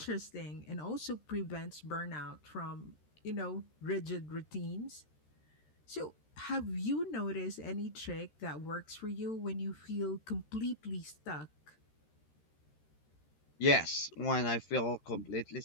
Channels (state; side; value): late; right; 13 ms